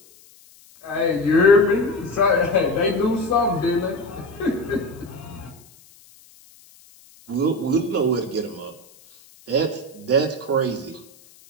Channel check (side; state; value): left; noise; hiss, 26 dB below the sound